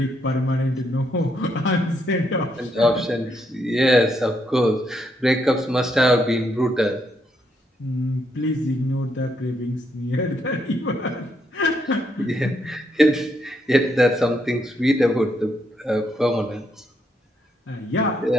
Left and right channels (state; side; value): normal; both; correlation 0.76